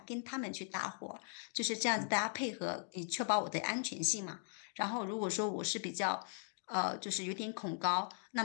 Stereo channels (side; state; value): right; silent; 52 dB below the other